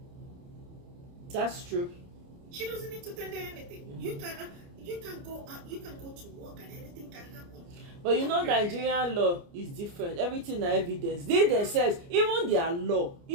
That's true. She doesn't need to tender anything. You can go to work and anything can happen. But Nigerian law is different. Everything is evidence. They themselves, even their law,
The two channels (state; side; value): late; left; 29 ms